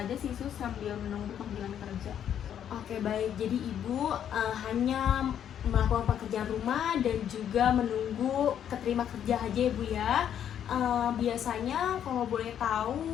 sih, Sus, sambil menunggu panggilan kerja. Oke, baik. Jadi Ibu hanya melakukan pekerjaan rumah dan juga menunggu keterima kerja aja ya Bu ya. Biasanya kalau boleh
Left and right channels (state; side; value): quieter; right; 9.5 dB